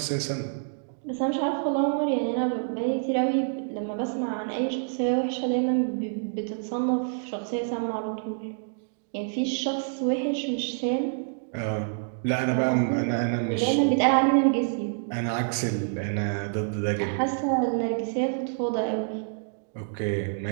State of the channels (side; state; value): left; silent; digital silence